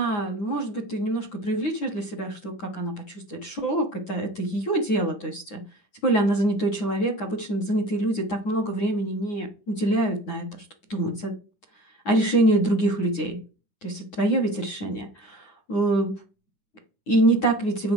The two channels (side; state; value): right; late; 9.6 ms